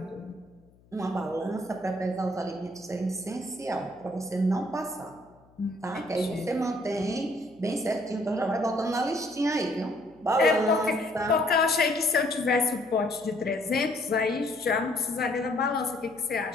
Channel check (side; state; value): left; noise; hum, 29 dB below the sound